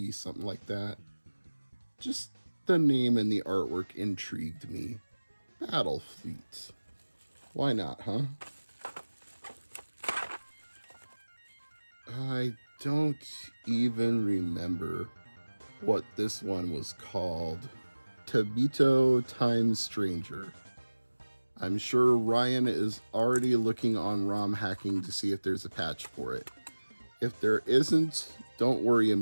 something like that. Just the name and the artwork intrigued me. Battlefleet. Why not, huh? I don't even remember what this one was called. Tabito Time Stranger. I'm sure Ryan is already looking on ROM hacking to see if there's a patch for it. If there isn't, don't worry,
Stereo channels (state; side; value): inverted; both; correlation -1.00